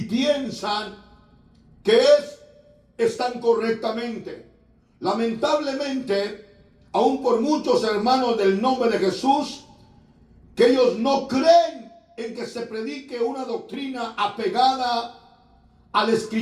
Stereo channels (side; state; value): both; identical; correlation 1.00